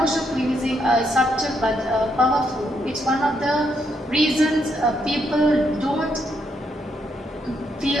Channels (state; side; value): normal; both; correlation 0.77